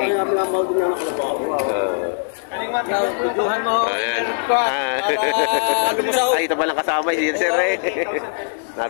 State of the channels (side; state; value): right; silent; digital silence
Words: Tuduhan mo. Ayan. Ay, ito palang kasama si sir eh.